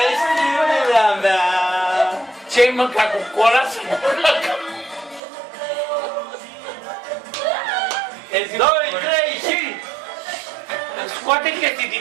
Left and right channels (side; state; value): left; drops out; at 5.2 s